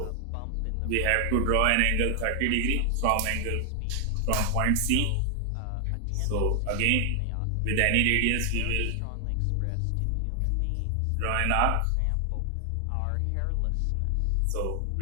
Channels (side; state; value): both; different; correlation 0.00